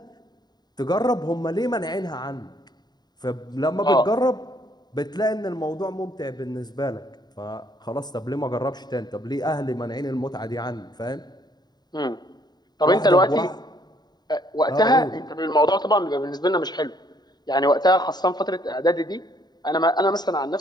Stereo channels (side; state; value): right; late; 0.20 ms